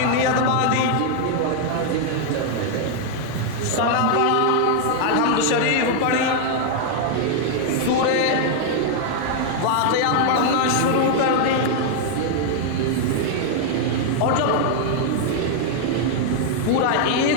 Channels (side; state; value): both; different; correlation 0.00